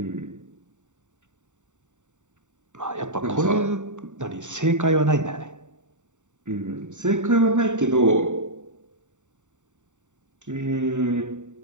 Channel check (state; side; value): late; left; 0.85 ms